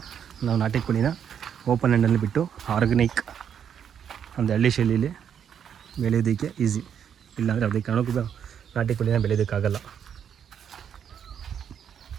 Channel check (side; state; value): left; quieter; 8.4 dB